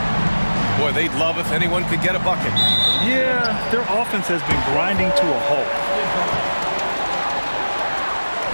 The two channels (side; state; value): both; inverted; correlation -1.00